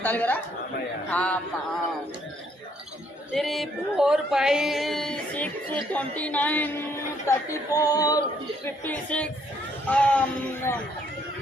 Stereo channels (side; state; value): both; normal; correlation 0.68